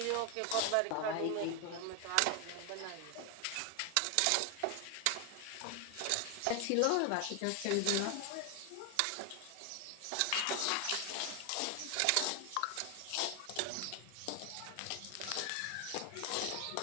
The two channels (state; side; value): different; both; correlation 0.01